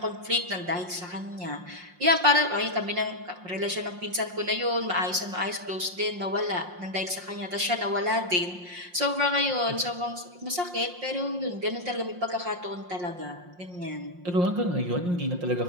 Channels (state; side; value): late; left; 5.6 ms